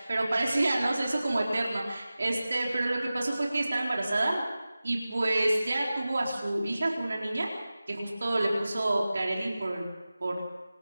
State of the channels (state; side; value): inverted; both; correlation -0.96